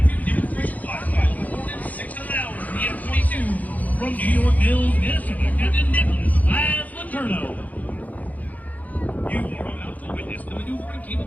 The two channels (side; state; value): right; late; 0.078 ms